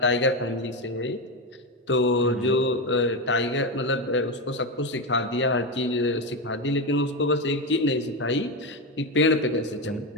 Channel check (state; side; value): normal; both; correlation 0.13